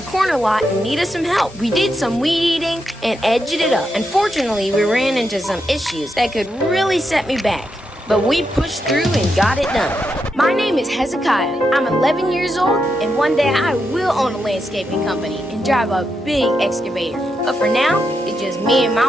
corner lot and needed some help. We did some weed eating and edged it up. Unfortunately, we ran into some issues that could really set me back. But we pushed through and got it done. My name is Hezekiah. I'm 11 years old, and one day I will own a landscaping company and drive a big excavator. But for now, it's just me and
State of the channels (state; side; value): normal; both; correlation 0.84